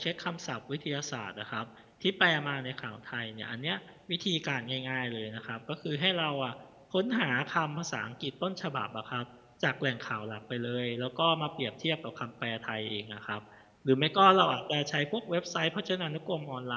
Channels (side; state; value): both; identical; correlation 1.00